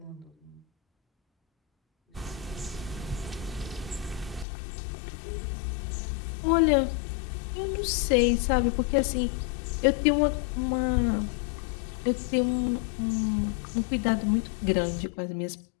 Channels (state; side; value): drops out; right; at 4.5 s